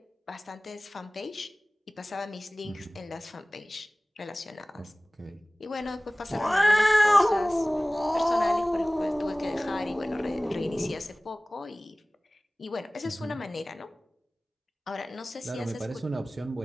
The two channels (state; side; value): normal; both; correlation 0.98